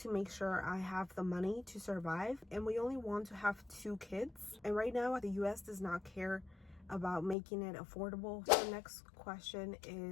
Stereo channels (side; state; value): right; drops out; at 7.4 s